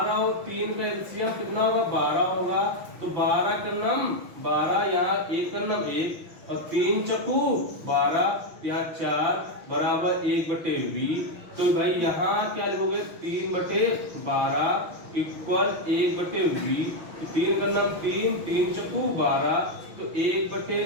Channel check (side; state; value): left; late; 6.1 ms